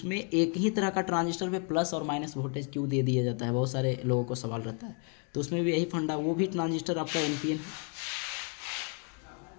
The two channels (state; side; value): quieter; right; 38.6 dB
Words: एक ही तरह का ट्रांजिस्टर पे प्लस और माइनस वोल्टेज क्यों दे दिया जाता है, बहुत सारे लोगों को सवाल रहता है। तो उसमें भी यही फंडा, वो भी ट्रांजिस्टर आपका एनपीएन है,